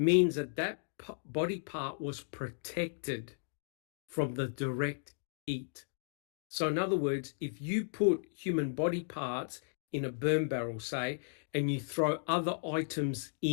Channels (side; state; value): right; silent; digital silence